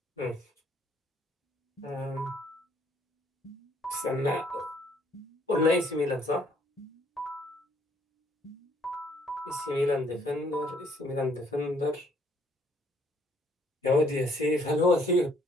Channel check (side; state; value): both; normal; correlation 0.65